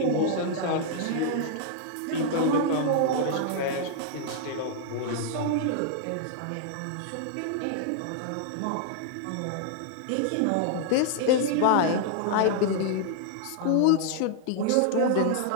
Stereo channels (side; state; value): both; different; correlation -0.01